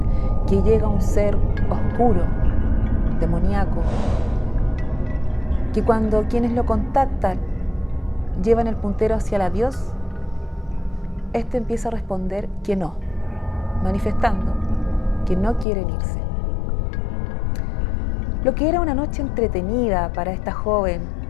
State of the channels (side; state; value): right; drops out; at 15.7 s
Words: que llega un ser oscuro, demoníaco, que cuando quienes lo contactan llevan el puntero hacia la Dios, este empieza a responder que no, manifestando que no quieren irse. Lo que era una noche entretenida para esta joven,